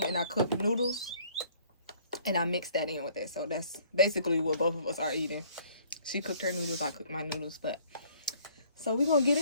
and I cooked noodles. And I mixed that in with it. So that's basically what both of us are eating. She cooked her noodles, I cooked my noodles. But so we're going to get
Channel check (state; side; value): inverted; both; correlation -0.59